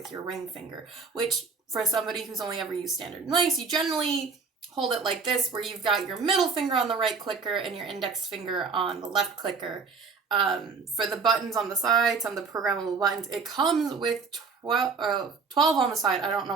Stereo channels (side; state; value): left; quieter; 4.9 dB